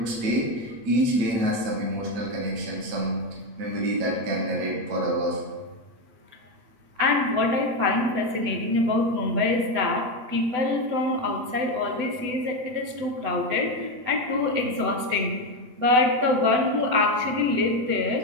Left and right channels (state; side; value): late; left; 8.0 ms